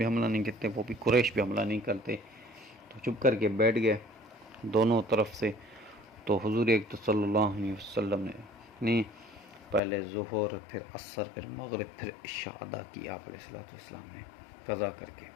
حملہ نہیں کرتے، وہ بھی قریش بھی حملہ نہیں کرتے، تو چپ کر کے بیٹھ گئے دونوں طرف سے۔ تو حضور اکرم صلی اللہ علیہ وسلم نے پہلے ظہر، پھر عصر، پھر مغرب، پھر عشاء ادا کی آپ علیہ الصلوۃ والسلام نے قضا کر کے۔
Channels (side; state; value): right; drops out; at 9.8 s